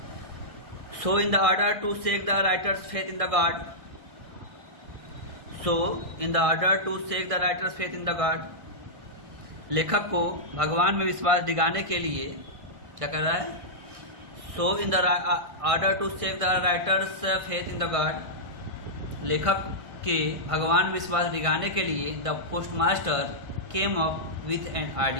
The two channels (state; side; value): late; left; 1.6 ms